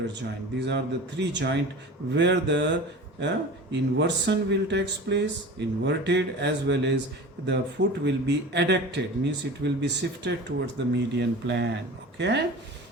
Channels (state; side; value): normal; both; correlation 0.36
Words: joint. These are the 3 joints where the inversion will takes place, inverted, as well as the foot will be adducted, means it will be shifted towards the median plane. Okay,